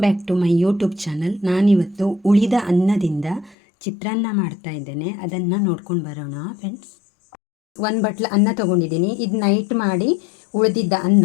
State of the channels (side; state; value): right; drops out; at 3.6 s